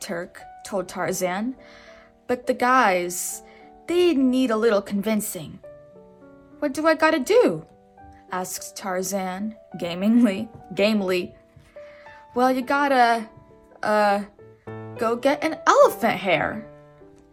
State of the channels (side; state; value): both; identical; correlation 1.00